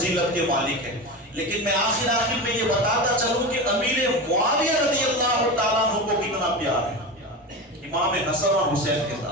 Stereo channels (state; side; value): normal; both; correlation 0.24